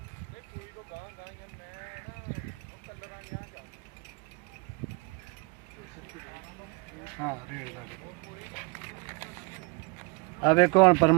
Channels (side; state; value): left; quieter; 27.7 dB